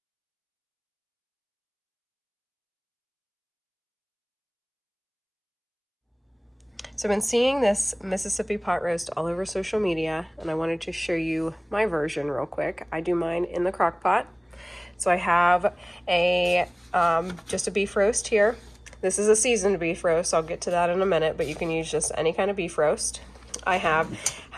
So I've been seeing this Mississippi pot roast all over social media, and I wanted to show you my version real quick. I do mine in the crock pot. So I have a just a beef roast here. This is a seasoned beef roast. I'll get to that in a minute, but you can use just any kind of beef roast. I have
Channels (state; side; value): identical; both; correlation 1.00